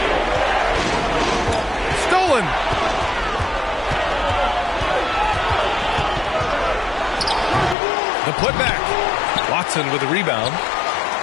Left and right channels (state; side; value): drops out; right; at 7.8 s